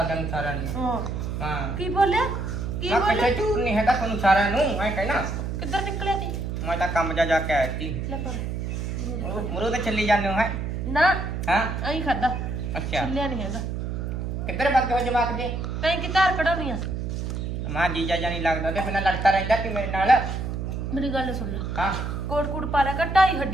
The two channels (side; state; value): right; noise; hum, 3 dB below the sound